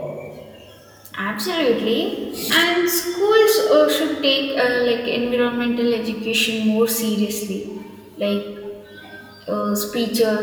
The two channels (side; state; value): both; identical; correlation 1.00